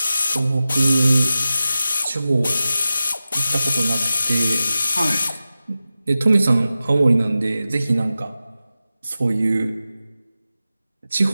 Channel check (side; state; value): both; inverted; correlation -0.93